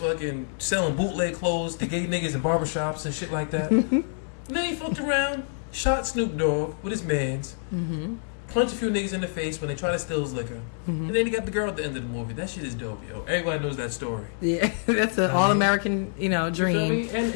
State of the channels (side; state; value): right; silent; digital silence